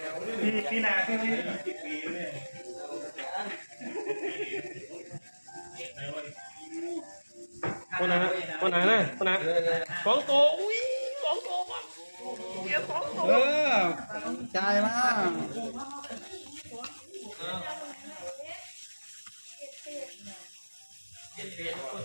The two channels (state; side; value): inverted; both; correlation -1.00